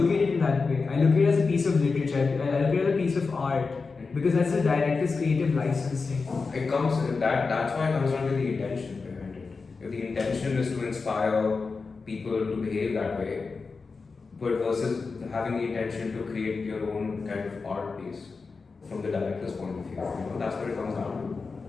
at it in that way. I look at it as a piece of literature. I look at it as a piece of art, because that's the director's creative licensing. That's why it comes down to the intention behind it. If the intention is to inspire people to behave that way, but versus having the intention to create your own kind of art piece from the director's point of view, that's what it comes down to.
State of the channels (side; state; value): right; quieter; 4.5 dB